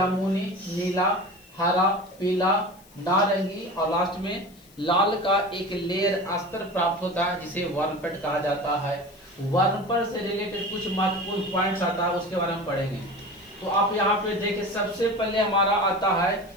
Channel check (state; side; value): noise; left; hiss, 27 dB below the sound